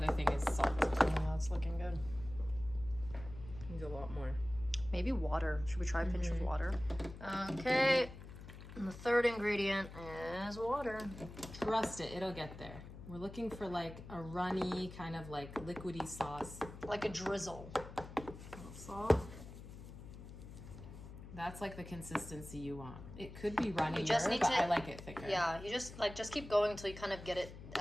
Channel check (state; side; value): noise; left; hum, 13 dB below the sound